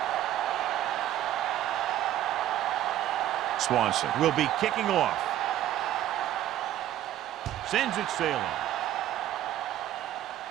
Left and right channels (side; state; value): left; quieter; 12.6 dB